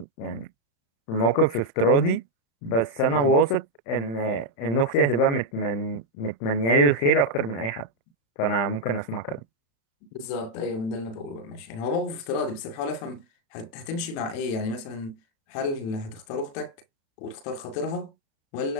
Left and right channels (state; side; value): late; right; 36 ms